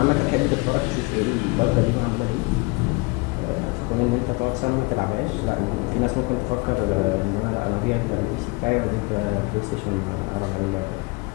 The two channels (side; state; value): right; quieter; 27.0 dB